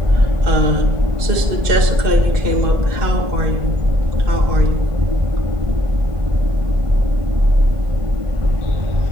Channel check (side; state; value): left; late; 2.0 ms